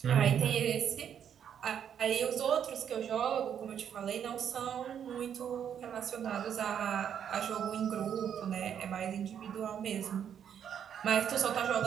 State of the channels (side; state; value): left; quieter; 8.7 dB